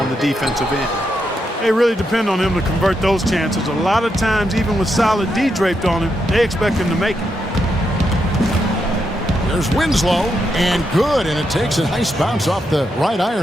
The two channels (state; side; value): normal; both; correlation 0.82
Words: the defensive end. They really depend on him to convert those chances. A lot of times, even with solid D draped on him, they expect him to make it. There's Winslow, and good, and it takes a nice bounce off the right